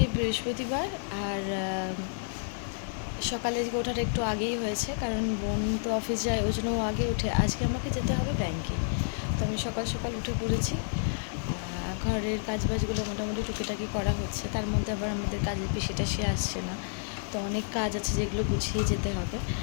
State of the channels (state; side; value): silent; right; digital silence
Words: বৃহস্পতিবার, আর সকালে ওঠাটা একটু আগেই হয়েছে, কারণ বোন তো অফিস যায়, ওই জন্য ও আগে উঠে। আজকে আমাকে যেতে হবে ব্যাংকে, তো আমি সকাল সকাল উঠে পড়েছি। ঘরের কাজবাজগুলো মোটামুটি টুকিটাকি করা হচ্ছে, তার মধ্যে আবার আমাদের কাজের পিসিটা সে আসছে না, তো অনেক কাজ আছে যেগুলো গুছিয়ে যেতে হবে।